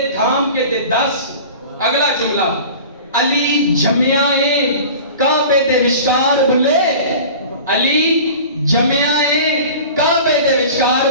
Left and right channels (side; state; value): both; inverted; correlation -0.39